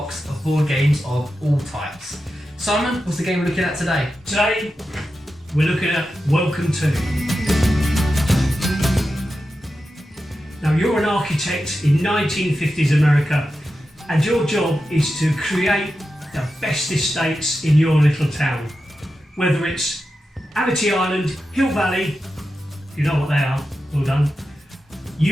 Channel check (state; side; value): normal; both; correlation 0.91